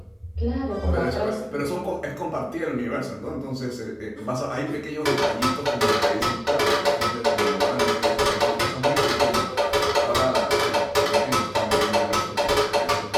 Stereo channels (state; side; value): identical; both; correlation 1.00